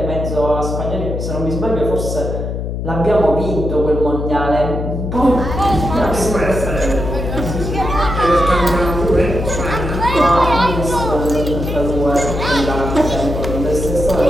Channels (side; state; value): left; noise; hum, 4 dB below the sound